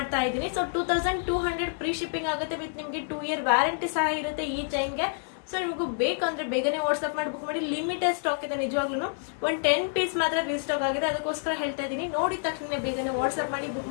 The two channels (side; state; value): right; silent; digital silence